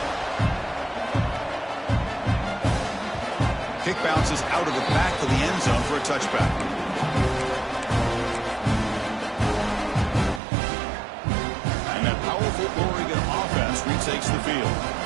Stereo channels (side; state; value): left; drops out; at 10.4 s